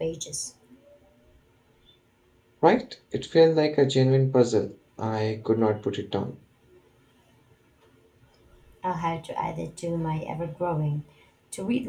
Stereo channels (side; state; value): both; identical; correlation 1.00